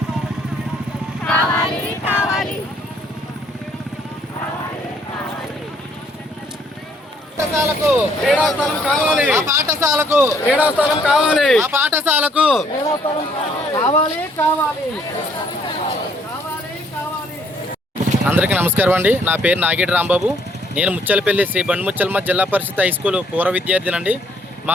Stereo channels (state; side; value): normal; both; correlation 0.65